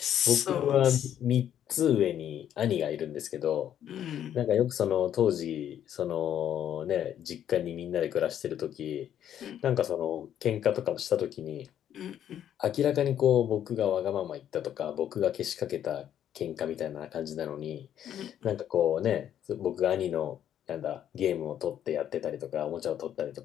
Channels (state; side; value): quieter; right; 10.3 dB